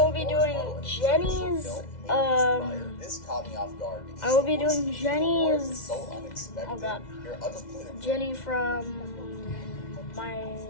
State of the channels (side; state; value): right; late; 2.0 ms